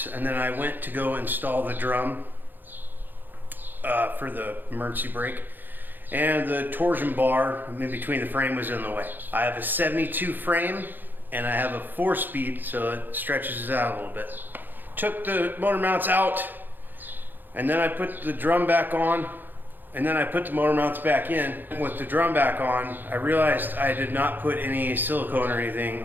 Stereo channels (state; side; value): late; left; 0.090 ms